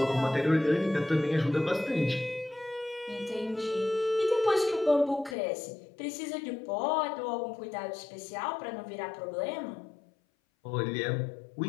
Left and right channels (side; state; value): right; drops out; at 5.4 s